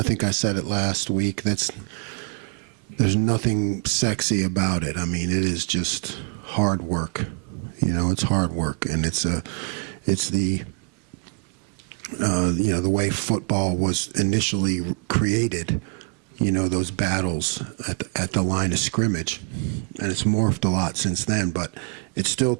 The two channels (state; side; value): quieter; left; 40.0 dB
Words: think I said it last week. There's nothing sexy about it. I mean, it is just hard work. You know, it's hard work, and it's the you know, the way football was initially created, those battles at the line of scrimmage. And it's morphed a lot since then, but it still